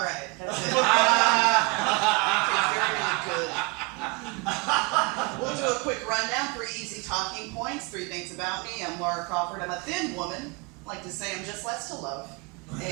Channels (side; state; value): left; quieter; 28.6 dB